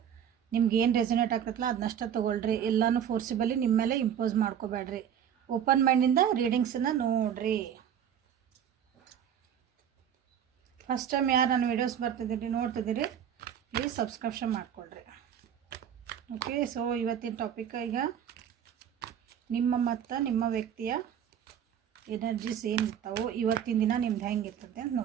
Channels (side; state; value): left; quieter; 9.1 dB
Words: ನಿಮ್ಗೆ ಏನು ರೆಸೊನೇಟ್ ಆಗ್ತೈತಲ್ಲ ಅದನ್ನಷ್ಟ ತೊಗೊಳ್ರಿ. ಎಲ್ಲನೂ ಫೋರ್ಸಿಬಲಿ ನಿಮ್ಮ ಮೇಲೆ ಇಂಪೋಸ್ ಮಾಡ್ಕೋಬೇಡ್ರಿ. ಓಪನ್ ಮೈಂಡಿಂದ ರೀಡಿಂಗ್ಸನ್ನು ನೋಡ್ರಿ. ಫಸ್ಟ್ ಟೈಮ್ ಯಾರು ನನ್ನ ವೀಡಿಯೋಸ್ ಬರ್ತಿದ್ದೀರಿ ನೋಡ್ತಿದ್ದೀರಿ ಪ್ಲೀಸ್ ಸಬ್ಸ್ಕ್ರಿಪ್ಷನ್ ಮಾಡ್ಕೊಳ್ರಿ. ಓಕೆ, ಸೊ ಇವತ್ತಿನ ಟಾಪಿಕ್ ಈಗ ನಿಮ್ಮ ಮತ್ತು ನಿಮ್ಮ ವ್ಯಕ್ತಿಯ ಎನರ್ಜೀಸ್ ಏನಿರ್ತಾವೆ, ಇವತ್ತಿನ ದಿನ ನಿಮ್ದು ಹೆಂಗಿರ್ತೈತೆ ಅಂತ